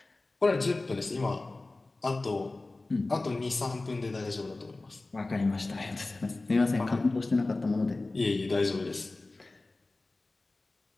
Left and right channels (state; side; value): quieter; right; 3.2 dB